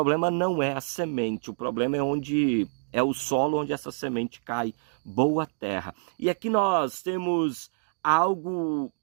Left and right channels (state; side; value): silent; left; digital silence